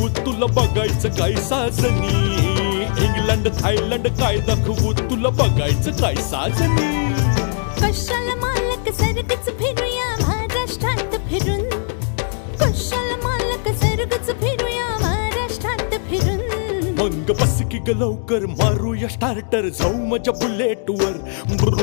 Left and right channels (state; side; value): silent; right; digital silence